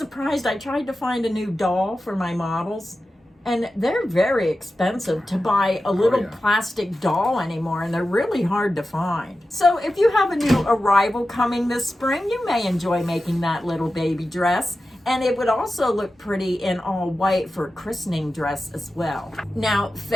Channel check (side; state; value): both; normal; correlation 0.93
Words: I tried to find a new doll for my models, and they're very expensive to buy a little plastic doll anymore, and they're really hard to find. So if you have a new arrival coming this spring, you may enjoy making that little baby dress. And it would also look pretty in all white for a christening dress as well. Now,